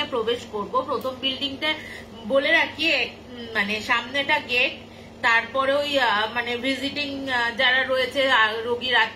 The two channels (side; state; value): both; identical; correlation 1.00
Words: এ প্রবেশ করব, প্রথম বিল্ডিংটা বলে রাখি মানে সামনেটা গেট, তারপরে ওই মানে ভিজিটিং যারা রয়েছে রোগীর